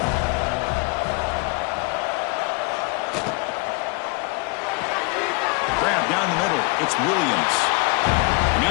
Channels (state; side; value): quieter; right; 28.5 dB